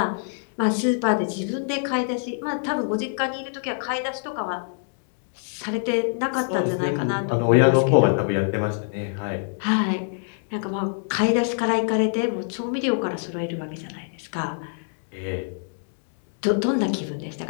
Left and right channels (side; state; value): right; silent; digital silence